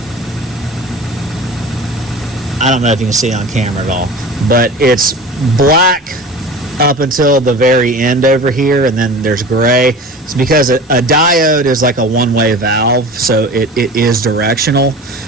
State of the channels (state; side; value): normal; both; correlation 0.36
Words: I don't know if you can see it on camera at all, but it's black up until the very end over here, and then there's gray. It's because a diode is like a one-way valve, so it is directional,